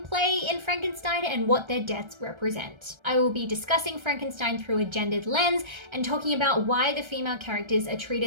play in Frankenstein and what their deaths represent. I will be discussing Frankenstein through a gendered lens and talking about why the female characters are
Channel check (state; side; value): late; left; 1.3 ms